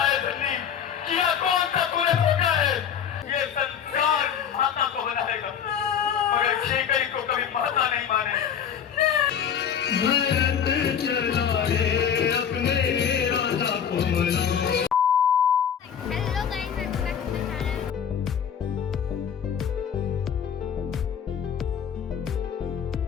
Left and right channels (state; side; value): quieter; right; 8.2 dB